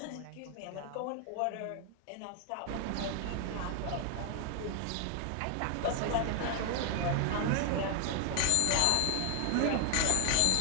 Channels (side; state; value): both; different; correlation 0.00